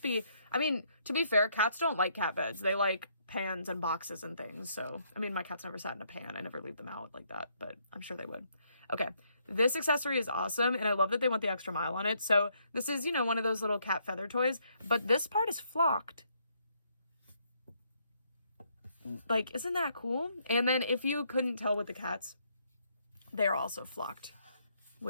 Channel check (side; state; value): both; inverted; correlation -0.71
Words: be, I mean, to be fair, cats don't like cat beds. They like pans and boxes and things. So, I mean, my cat's never sat in a pan. I never leave them out like that, but I'm sure they would. Okay, this accessory is awesome, and I love that they went the extra mile on it. So this is, you know, one of those little cat feather toys, but this part is flocked. Like, isn't that cool? And then if you couldn't tell with the cats, they're also flocked,